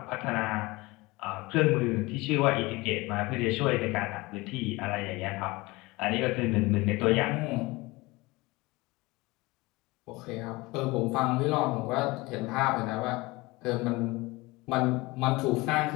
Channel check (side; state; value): right; quieter; 22.4 dB